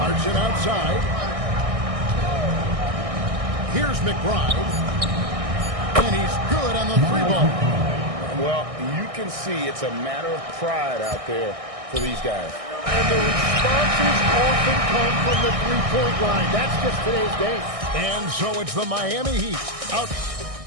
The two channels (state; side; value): late; left; 1.6 ms